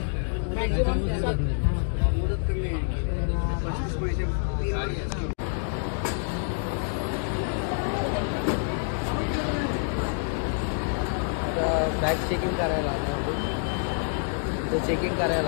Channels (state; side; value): silent; right; 60 dB below the other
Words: बॅग चेकिंग करायला लागणार. चेकिंग करायला